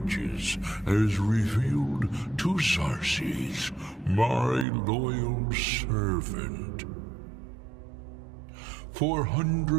as revealed to Xarxes, my loyal servant. For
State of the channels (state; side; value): drops out; left; at 4.7 s